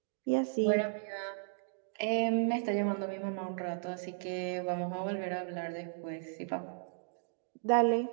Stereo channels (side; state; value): left; silent; digital silence